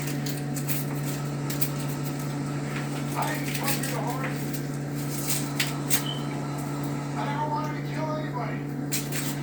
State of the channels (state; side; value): identical; both; correlation 1.00